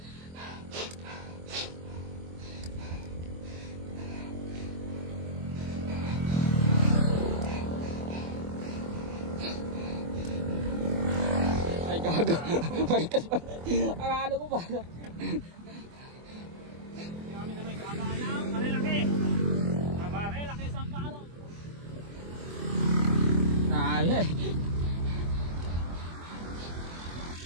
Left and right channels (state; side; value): late; left; 24 ms